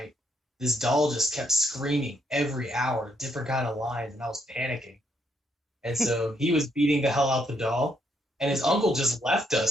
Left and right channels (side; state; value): both; normal; correlation 0.74